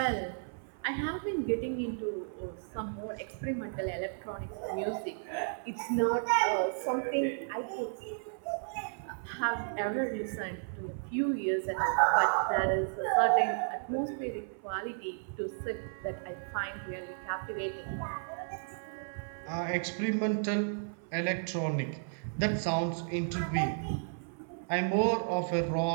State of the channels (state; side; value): silent; left; 55 dB below the other